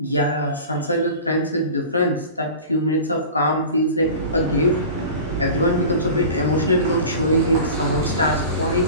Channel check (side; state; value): both; inverted; correlation -0.36